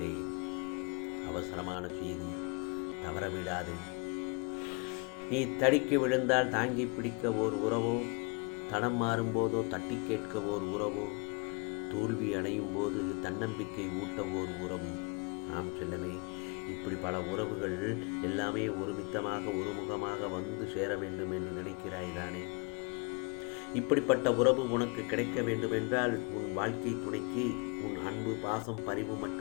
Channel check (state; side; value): quieter; right; 31.7 dB